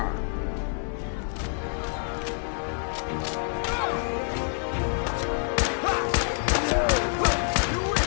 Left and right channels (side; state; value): right; silent; 55 dB below the other